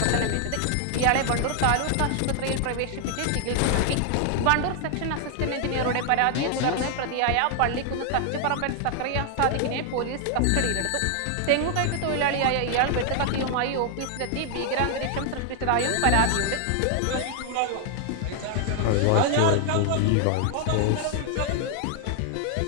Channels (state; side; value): different; both; correlation 0.00